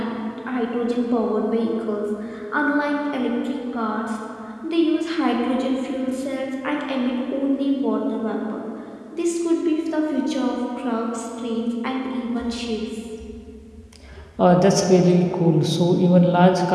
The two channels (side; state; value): both; identical; correlation 1.00